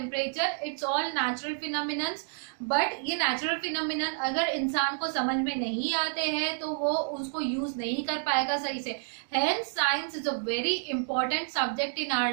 It's all natural phenomenon, but ये natural phenomenon अगर इंसान को समझ में नहीं आते हैं तो वो उसको यूज नहीं कर पाएगा सही से। Hence science is a very important subject in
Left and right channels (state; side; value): silent; left; digital silence